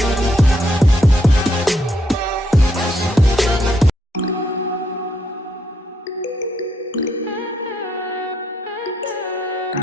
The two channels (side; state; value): both; normal; correlation 0.75